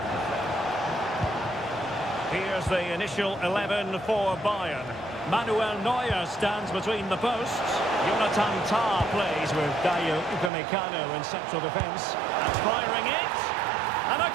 Here's the initial 11 for Bayern. Manuel Neuer stands between the posts. Jonathan Tah plays with Dayo Upamecano in central defence. And firing it. And a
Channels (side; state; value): left; drops out; at 10.5 s